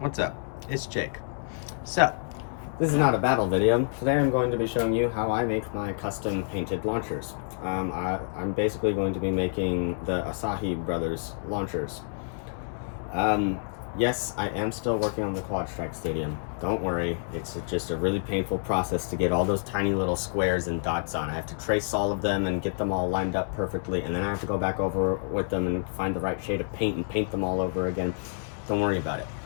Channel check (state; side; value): silent; right; digital silence